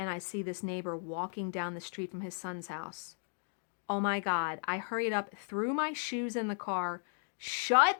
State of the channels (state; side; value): silent; right; 54 dB below the other